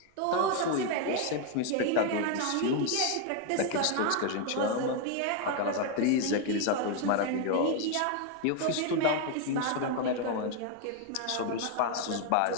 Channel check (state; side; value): different; both; correlation 0.01